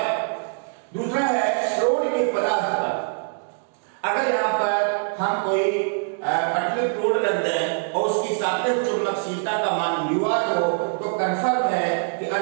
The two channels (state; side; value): silent; left; digital silence